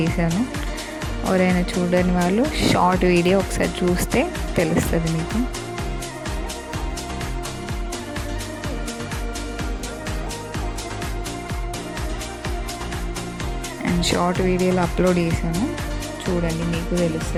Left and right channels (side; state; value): both; identical; correlation 1.00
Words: చేశాను. ఎవరైనా చూడని వాళ్ళు షార్ట్ వీడియో ఒకసారి చూస్తే తెలుస్తుంది మీకు. అండ్ షార్ట్ వీడియోలో అప్లోడ్ చేశాను, చూడండి మీకు